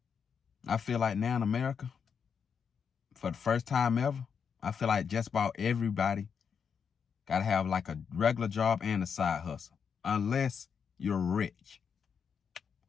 I feel like now in America, for the first time ever, I feel like just about everybody got to have like a regular job and a side hustle, unless you're rich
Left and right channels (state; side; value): quieter; right; 6.7 dB